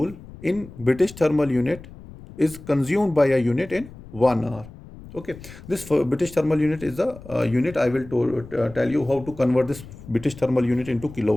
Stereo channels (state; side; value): noise; left; rumble, 17 dB below the sound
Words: in British thermal unit is consumed by a unit in 1 hour. Okay, this British thermal unit is the unit. I will tell you how to convert this British thermal unit into